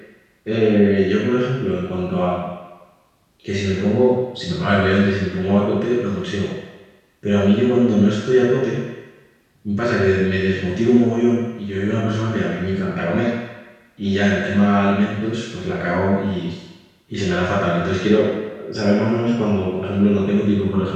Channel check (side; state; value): both; identical; correlation 1.00